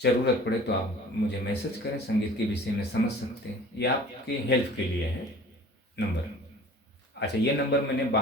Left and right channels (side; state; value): both; normal; correlation 0.46